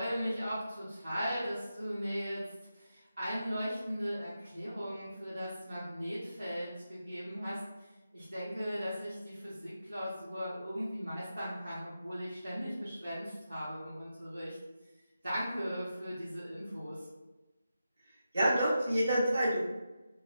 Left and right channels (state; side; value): inverted; both; correlation -0.89